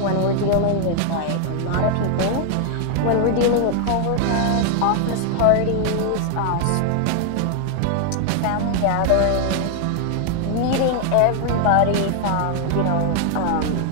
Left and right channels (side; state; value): both; different; correlation 0.00